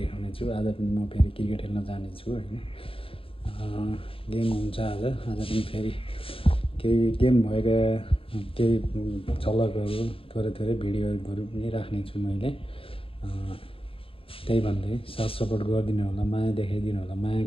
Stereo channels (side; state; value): right; late; 0.27 ms